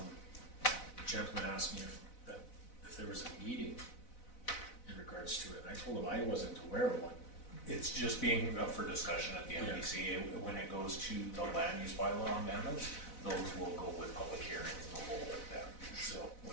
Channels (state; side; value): late; right; 4.0 ms